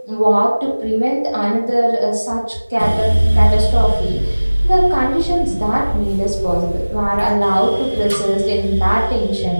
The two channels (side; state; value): both; inverted; correlation -1.00